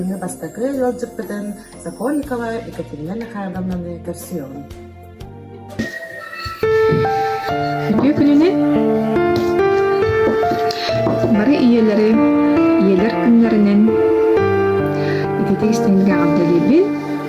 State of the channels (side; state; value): both; identical; correlation 1.00